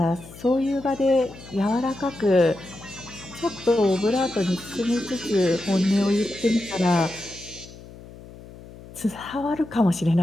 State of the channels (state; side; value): noise; left; hum, 18 dB below the sound